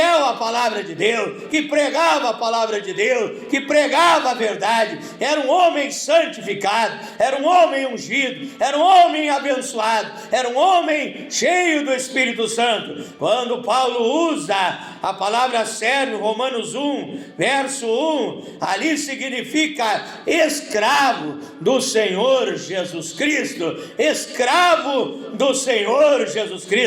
à palavra de Deus, que pregava a palavra de Deus, que pregava a verdade. Era um homem santificado, era um homem ungido, era um homem abençoado, era um homem cheio do Espírito Santo. Quando Paulo usa a palavra servo, Romanos 1, verso 1, ali significa escravo do Senhor Jesus Cristo, escravo do Senhor Jesus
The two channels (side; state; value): both; identical; correlation 1.00